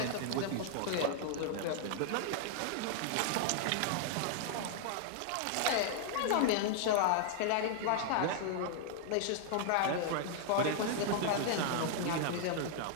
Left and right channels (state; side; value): different; both; correlation -0.01